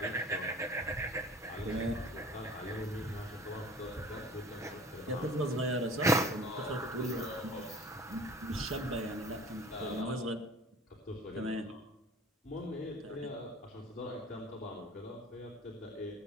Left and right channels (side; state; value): both; normal; correlation 0.45